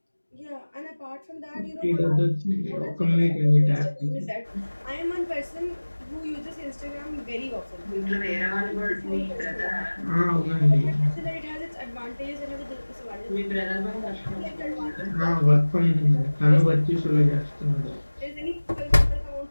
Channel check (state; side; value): inverted; both; correlation -1.00